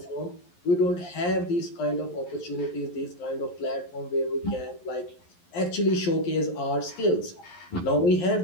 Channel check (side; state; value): right; late; 11 ms